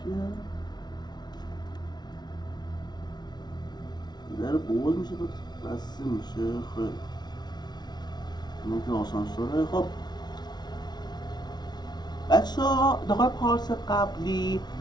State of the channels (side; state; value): right; late; 0.20 ms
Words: در باز میشه بسته میشه. خیلی اینو که آسانسوره. خب بچه ها داخل پارس قبلی